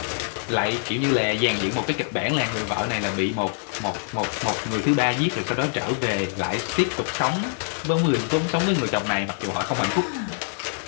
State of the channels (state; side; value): silent; right; 62 dB below the other